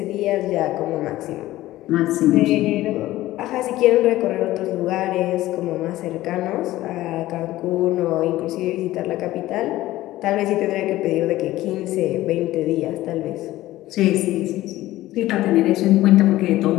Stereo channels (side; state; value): right; quieter; 16.0 dB